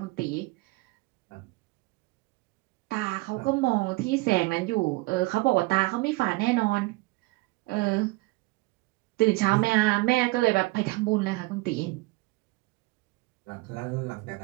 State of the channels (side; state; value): left; quieter; 22.5 dB